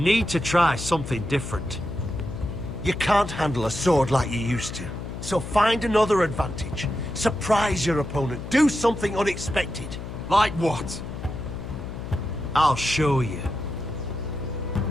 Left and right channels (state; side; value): noise; left; hum, 9 dB below the sound